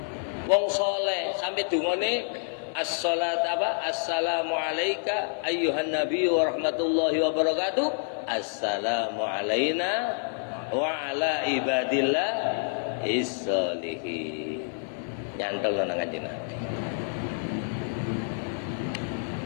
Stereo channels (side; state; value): right; silent; 59 dB below the other